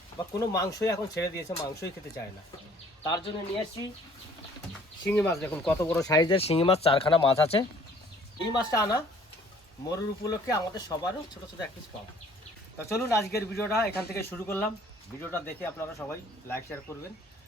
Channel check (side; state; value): both; normal; correlation 0.57